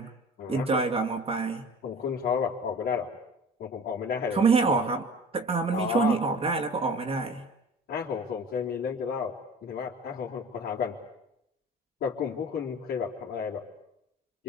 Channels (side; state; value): both; normal; correlation 0.41